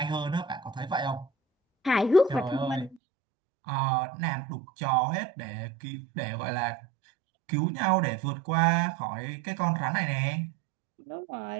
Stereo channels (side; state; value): left; drops out; at 3.0 s